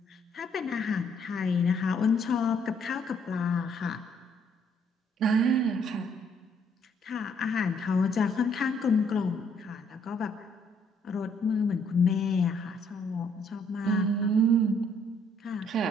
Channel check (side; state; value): both; normal; correlation 0.67